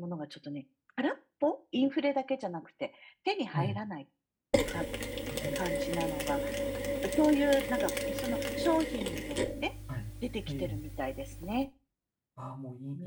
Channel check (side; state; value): both; identical; correlation 1.00